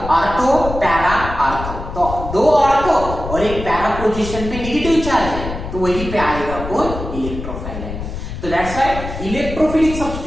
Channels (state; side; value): noise; left; rumble, 8 dB below the sound